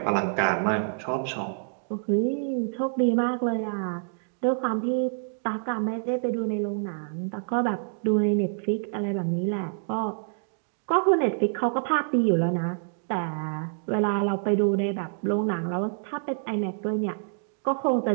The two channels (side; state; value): left; silent; digital silence